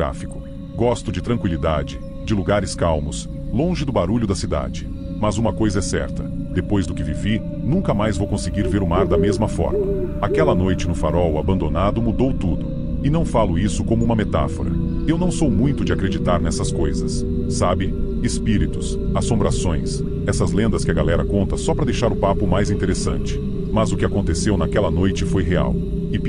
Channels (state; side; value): identical; both; correlation 1.00